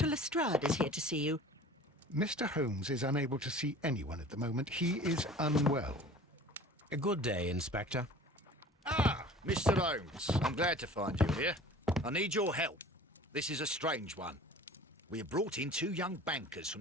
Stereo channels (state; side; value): normal; both; correlation 0.44